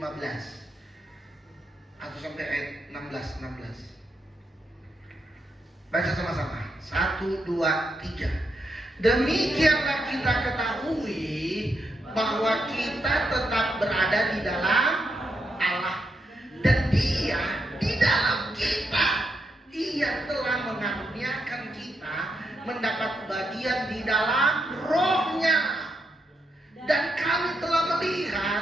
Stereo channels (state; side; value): normal; both; correlation 0.82